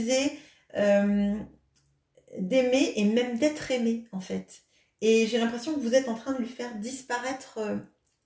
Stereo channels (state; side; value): identical; both; correlation 1.00